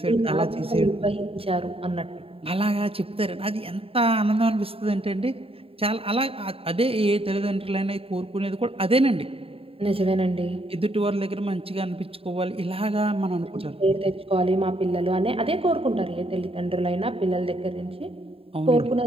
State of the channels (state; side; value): late; left; 0.27 ms